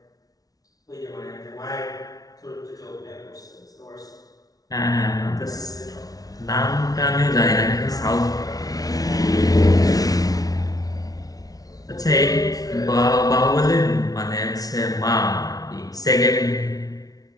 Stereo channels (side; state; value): right; late; 0.18 ms